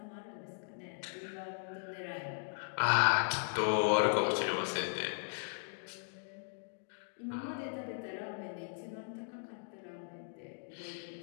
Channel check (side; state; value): right; silent; digital silence